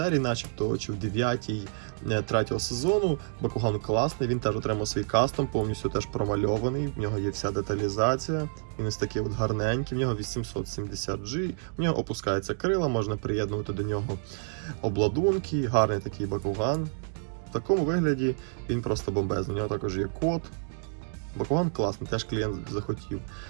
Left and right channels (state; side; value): silent; left; 59 dB below the other